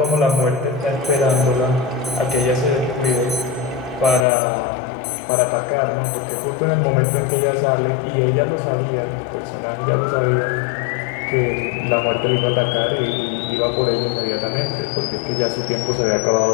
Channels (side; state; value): right; drops out; at 4.2 s